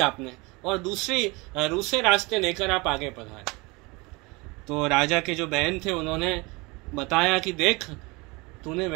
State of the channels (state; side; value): quieter; left; 25.6 dB